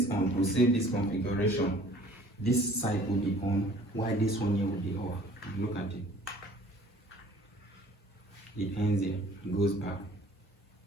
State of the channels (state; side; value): normal; both; correlation 0.52